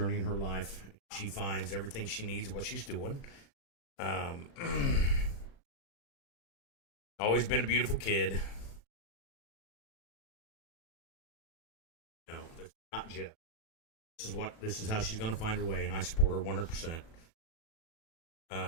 in her life. She finds everything she needs, what she's doing. Always been a beautiful kid. No, that's not Jeff. This is how she's going to find her way, and I support her 100%.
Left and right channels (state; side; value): late; right; 37 ms